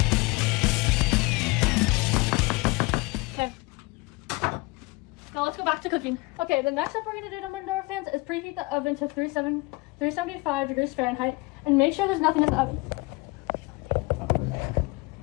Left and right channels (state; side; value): quieter; right; 24.8 dB